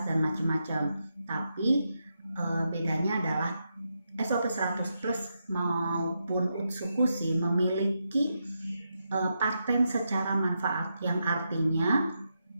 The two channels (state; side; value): inverted; both; correlation -0.84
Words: dan macam-macam. Tapi bedanya adalah SOP 100 Plus maupun Utsukushi memiliki paten secara manfaat, yang artinya